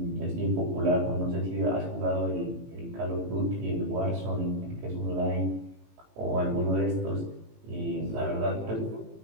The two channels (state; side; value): late; left; 18 ms